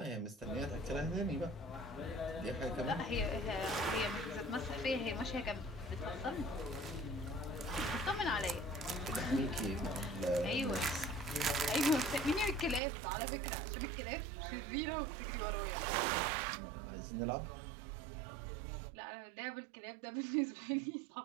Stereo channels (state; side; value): drops out; left; at 12.8 s